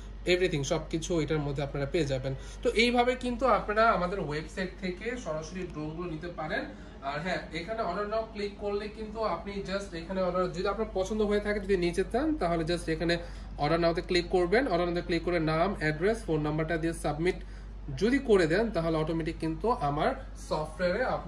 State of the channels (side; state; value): both; identical; correlation 1.00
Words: এভরিথিং সবকিছু এটার মধ্যে আপনারা পেয়ে যাবেন। তো এইভাবে কিন্তু আপনারা আমাদের ওয়েবসাইট থেকে সরাসরি ড্রোনগুলো নিতে পারেন। আর হ্যাঁ, এখানে অর্ডার নাও ক্লিক করলে কিন্তু আপনি জাস্ট এখানে অর্ডার, যদি আপনার পছন্দ হয়ে থাকে, যদি নিচে চান, তাহলে জাস্ট এখানে অর্ডার নাওতে ক্লিক করবেন। অর্ডার নাওতে ক্লিক করে নাম, অ্যাড্রেস, ফোন নাম্বারটা দিয়ে সাবমিট যদি করে দেন, তাহলে অটোমেটিক কিন্তু আমার সফটওয়্যারে